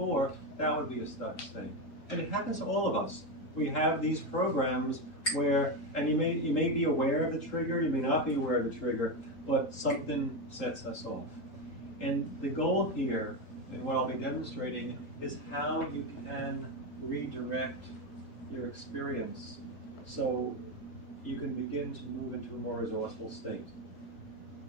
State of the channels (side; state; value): right; late; 3.8 ms